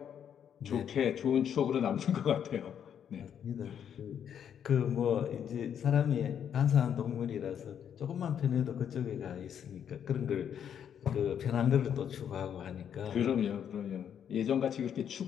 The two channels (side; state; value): right; quieter; 8.7 dB